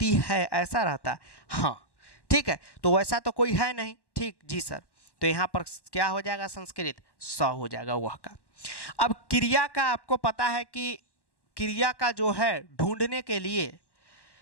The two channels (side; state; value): right; late; 1.1 ms